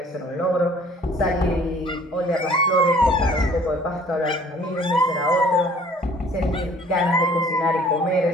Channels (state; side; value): normal; both; correlation 0.53